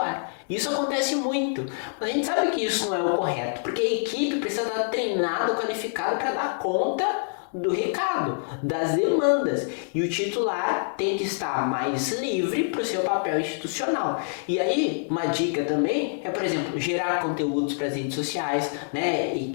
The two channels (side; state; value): right; silent; 61 dB below the other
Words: Isso acontece muito, mas a gente sabe que isso não é o correto, porque a equipe precisa estar treinada, qualificada para dar conta do recado, das demandas, e o titular tem que estar mais livre para o seu papel institucional. E aí, uma dica também é, por exemplo, gerar conteúdos para as redes sociais, né, e